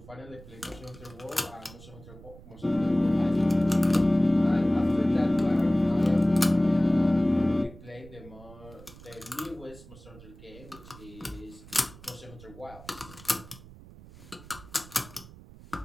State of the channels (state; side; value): noise; right; rumble, 19 dB below the sound